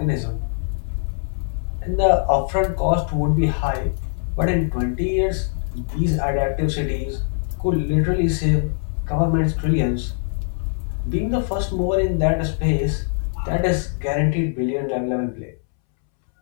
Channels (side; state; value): right; silent; 64 dB below the other